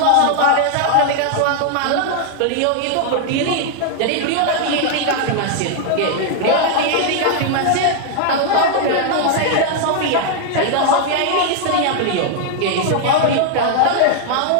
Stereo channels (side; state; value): both; different; correlation 0.00